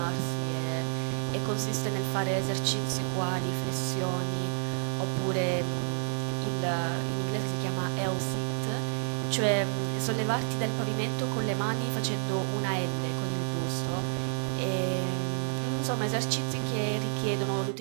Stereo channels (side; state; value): left; silent; digital silence